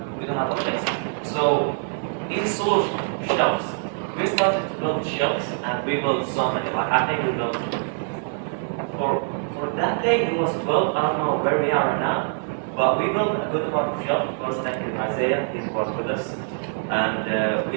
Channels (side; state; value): left; silent; 62 dB below the other